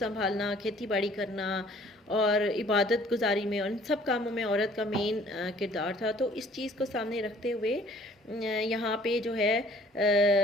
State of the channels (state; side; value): normal; both; correlation 0.55